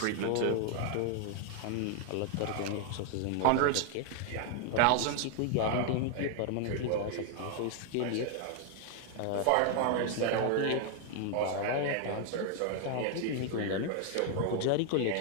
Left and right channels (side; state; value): both; different; correlation 0.00